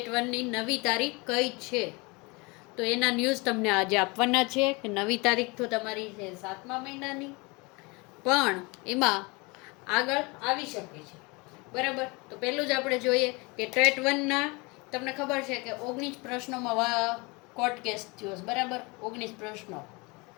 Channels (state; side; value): quieter; right; 27.0 dB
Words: 1ની નવી તારીખ કઈ છે, તો એના ન્યૂઝ તમને આજે આપવાના છે કે નવી તારીખ તો તમારી છે 7મા મહિનાની, પણ એમાં આગળ આવી શકે છે. બરાબર. તો પહેલું જ આપણે જોઈએ કે ટેટ 1ના તમને ખબર છે કે 19 પ્રશ્નોમાં કોર્ટ કેસ થયો છે. બરાબર, 19 પ્રશ્નો.